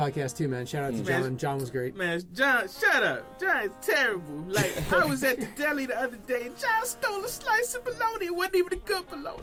too, man. Shout out to John. John was great. Man, John, shut up. John is terrible. Like, I was at the deli the other day and John stole a slice of bologna. It wasn't even a good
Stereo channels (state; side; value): identical; both; correlation 1.00